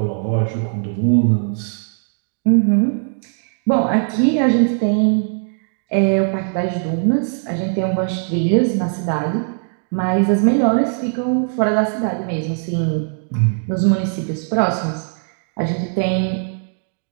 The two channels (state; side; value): silent; left; digital silence